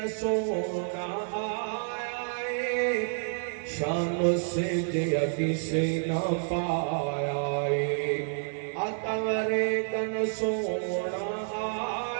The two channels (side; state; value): left; silent; 58 dB below the other